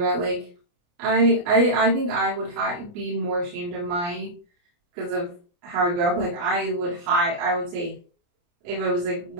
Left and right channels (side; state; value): left; late; 29 ms